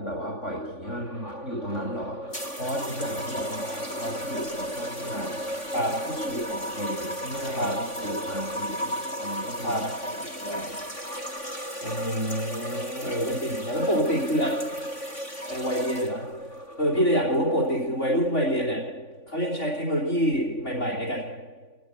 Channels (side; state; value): right; late; 3.5 ms